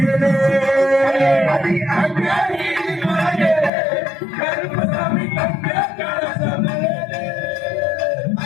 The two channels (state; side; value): drops out; right; at 3.7 s